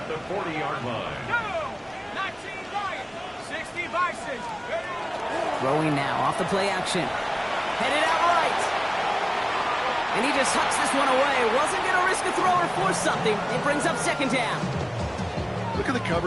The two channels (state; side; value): identical; both; correlation 1.00